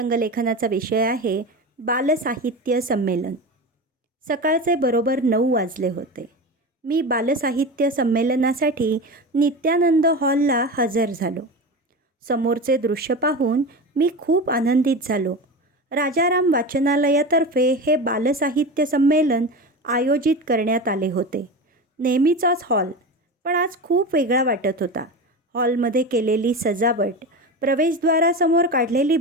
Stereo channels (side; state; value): both; normal; correlation 0.26